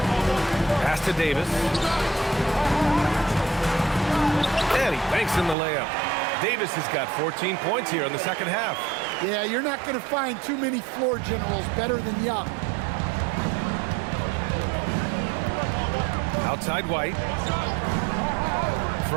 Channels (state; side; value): drops out; left; at 5.6 s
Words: Pass to Davis. And he banks in the layup. Davis has got 14 points here in the second half. Yeah, you're not going to find too many floor generals better than Young. Outside White.